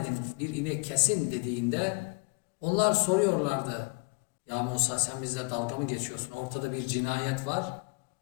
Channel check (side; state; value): right; quieter; 31.0 dB